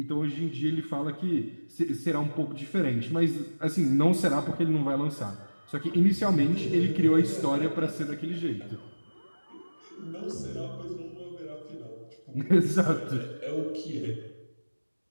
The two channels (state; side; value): inverted; both; correlation -1.00